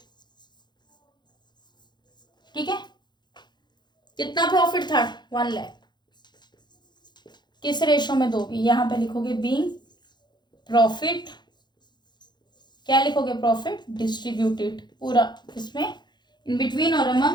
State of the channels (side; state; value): right; late; 0.21 ms